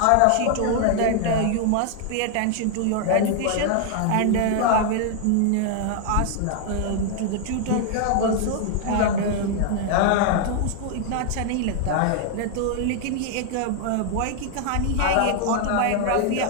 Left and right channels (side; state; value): both; different; correlation 0.00